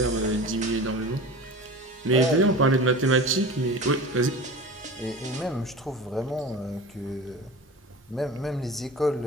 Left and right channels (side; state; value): both; normal; correlation 0.35